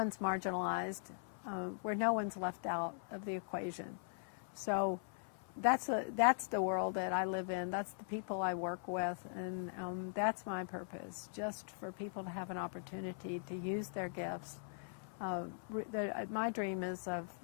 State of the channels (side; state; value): right; silent; 51 dB below the other